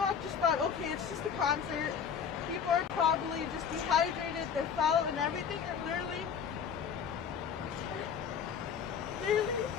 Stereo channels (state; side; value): quieter; right; 7.1 dB